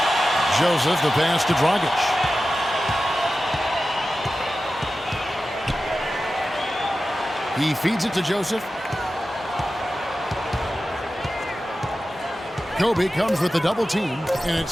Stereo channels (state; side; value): normal; both; correlation 0.94